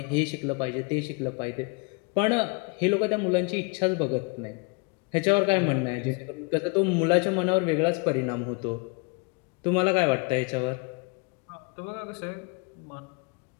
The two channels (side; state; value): right; quieter; 31.5 dB